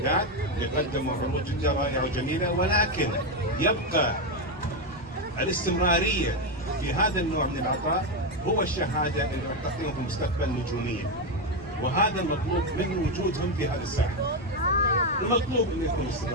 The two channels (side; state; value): both; normal; correlation 0.08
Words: اللي قدموا عروض جدا رائعه وجميله، ولكن يبقى الاستمراريه في هذا النوع من العطاء هو الشهاده اللي راح تعطيهم في المستقبل نجوميه، وهذا المطلوب من وجودهم في هذه الساحه. المطلوب انه يكون